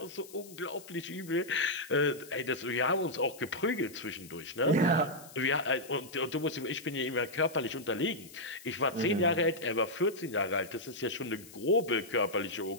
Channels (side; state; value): left; noise; hiss, 19 dB below the sound